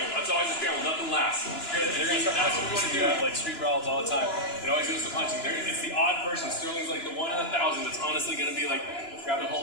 It's always a scramble. Nothing lasts. That's what we want to do. Like street brawls all the time. It always goes to punching. It's the odd person. Sterling's like the 1 in 1,000 that's honestly going to be like grabbing a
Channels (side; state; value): right; late; 2.9 ms